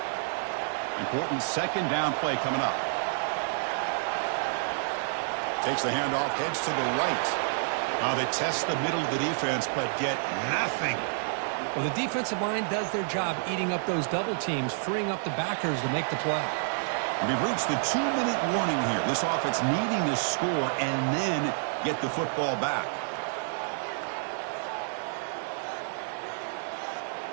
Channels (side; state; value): left; silent; digital silence